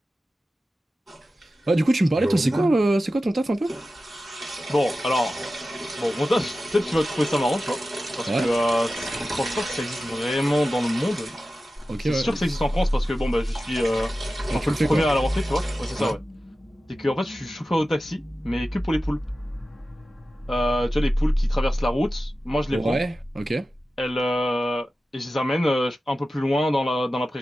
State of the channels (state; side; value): normal; both; correlation 0.94